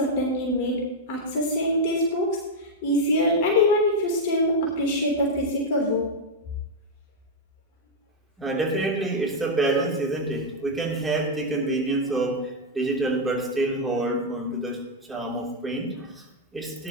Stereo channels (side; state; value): both; normal; correlation 0.00